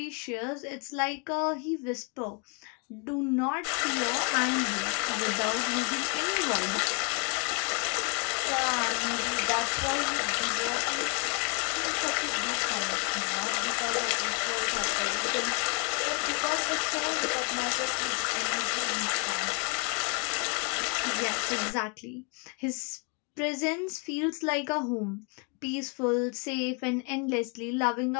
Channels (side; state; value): right; quieter; 35.1 dB